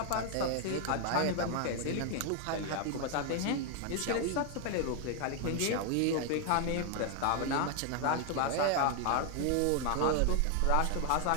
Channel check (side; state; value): both; different; correlation 0.00